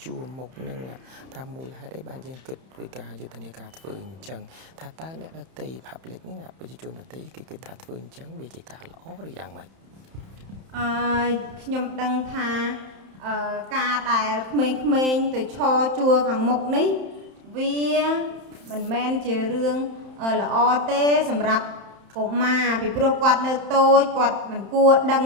ជួមមុខនឹងថាមូលហេតុអីបានយើងគិតធ្វើការយុទ្ធនាការធ្វើអញ្ចឹងថាតើអ្នកដទៃ public ហ្នឹងប្រជាជនដទៃគេគិតថាធ្វើអញ្ចឹងវាជាការល្អឬយ៉ាងម៉េច ខ្ញុំដឹងថាការដែលក្មេងៗទៅឈរជួរខាងមុខនេះវាមិនមែនជារឿងល្អទេសម្រាប់កុមារពីព្រោះគាត់នៅតូចគាត់មិនគួរដឹង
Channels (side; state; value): left; late; 31 ms